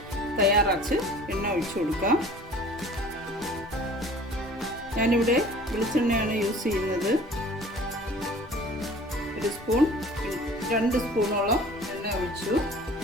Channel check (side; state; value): both; normal; correlation 0.47